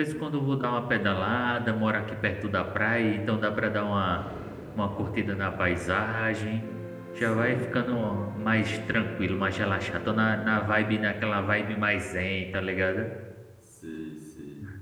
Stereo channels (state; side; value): identical; both; correlation 1.00